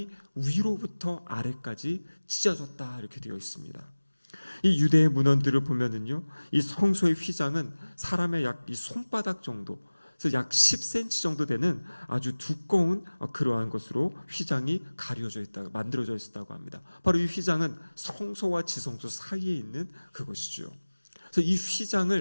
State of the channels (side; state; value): both; inverted; correlation -1.00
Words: 위로부터 아래까지 찢어졌다, 이렇게 되어 있습니다. 이 유대의 문헌들을 보면은요, 이 성소의 휘장은 사람의 약 이 손바닥 정도, 그래서 약 10cm 정도 되는 아주 두꺼운 그러한 것으로 휘장이 만들어져 있었다고 합니다. 바로 이 휘장은 성소와 지성소 사이에 있는 그것이죠. 그래서 이